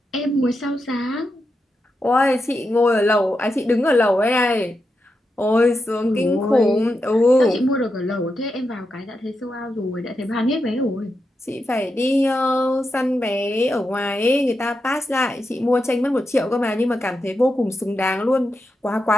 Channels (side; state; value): both; normal; correlation 0.87